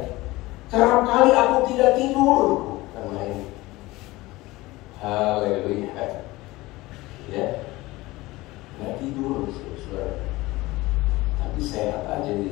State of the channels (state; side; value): quieter; right; 19.8 dB